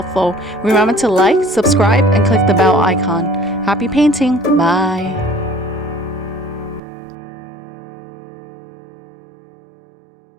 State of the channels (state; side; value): drops out; left; at 6.8 s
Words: Remember to like, subscribe, and click the bell icon. Happy painting! Bye!